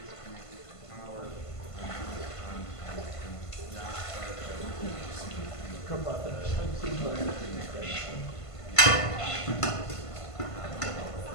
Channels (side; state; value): right; late; 1.5 ms